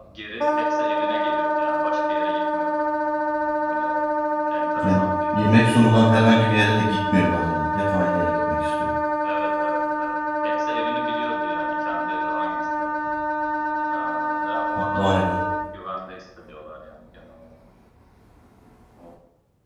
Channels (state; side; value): identical; both; correlation 1.00